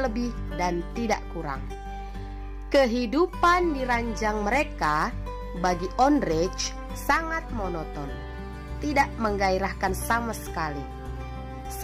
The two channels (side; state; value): both; identical; correlation 1.00